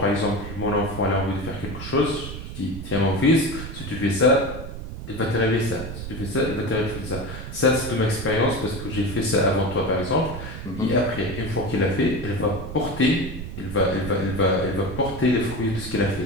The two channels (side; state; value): right; noise; rumble, 9 dB below the sound